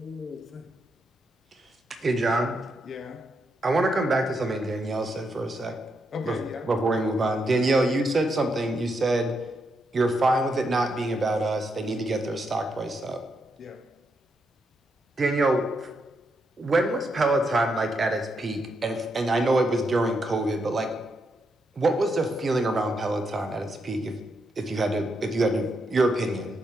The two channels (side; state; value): both; normal; correlation 0.81